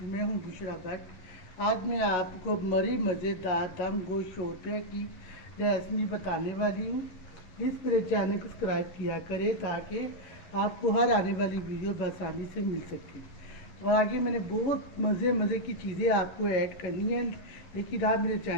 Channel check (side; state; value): right; late; 11 ms